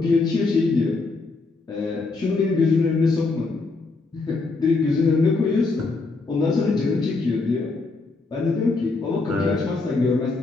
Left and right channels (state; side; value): quieter; right; 3.7 dB